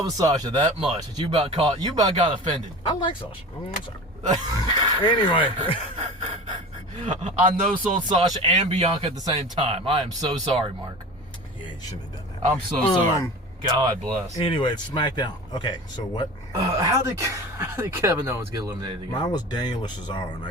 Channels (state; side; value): normal; both; correlation 0.35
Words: with Sasha that much that you about got offended. I like Sasha. I'm sorry. Anyway, I know sold Sasha and Bianca at the same time. I am so sorry, Mark. yeah, you shouldn't have done that. I'm so sorry. God bless. Anyway, it's SmackDown. Okay, so what? How did Kevin Owens get eliminated again? Mine was Daniel or Cesaro, and